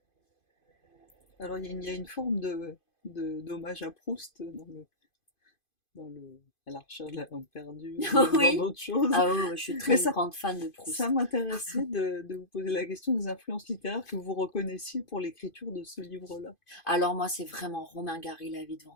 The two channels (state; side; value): late; right; 2.5 ms